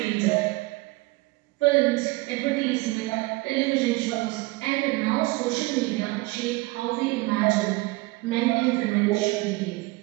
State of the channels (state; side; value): quieter; left; 22.7 dB